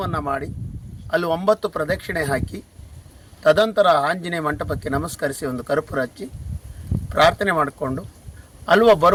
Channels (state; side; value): identical; both; correlation 1.00